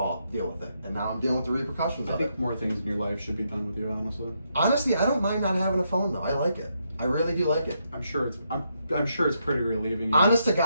Deal with it." And now I'm dealing with the repercussions I of think it. more things in your life should be done with you, honestly. Honestly, I don't mind not having a phone though. I like it. I really do like it. I'm sure it's pretty relieving. Honest to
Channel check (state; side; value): inverted; both; correlation -0.79